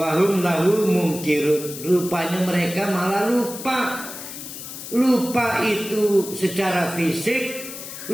lahu mungkirun. Rupanya mereka malah lupa. Lupa itu secara fisik,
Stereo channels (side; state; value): left; noise; hiss, 11 dB below the sound